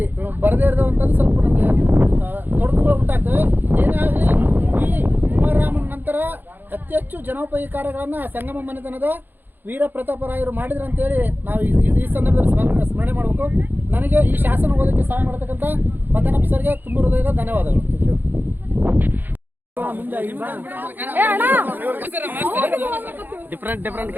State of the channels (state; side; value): late; left; 0.090 ms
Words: ಬರದೇ ಇರೋವಂಥದ್ದು ಸ್ವಲ್ಪ ನಮಗೆ ತೊಡಕುಗಳು ಉಂಟಾಗ್ತವೆ. ಏನೇ ಆಗಲಿ, ಈ ಕುಮಾರರಾಮನ ನಂತರ ಅತಿ ಹೆಚ್ಚು ಜನೋಪಯೋಗಿ ಕಾರ್ಯಗಳನ್ನು ಸಂಗಮ ಮನೆತನದ ವೀರ ಪ್ರತಾಪರಾಯರು ಮಾಡಿದ್ರು ಅಂತೇಳಿ ನಾವು ಈ ಸಂದರ್ಭದಲ್ಲಿ ಸ್ಮರಣೆ ಮಾಡಬೇಕು. ನನಗೆ ಈ ಶಾಸನ ಓದಕ್ಕೆ ಸಹಾಯ ಮಾಡತಕ್ಕಂಥ ಮದನಪ್ಪ ಸರ್ಗೆ ತುಂಬ ಹೃದಯದ ಧನ್ಯವಾದಗಳು. ಡಿಫ್ರೆಂಟ್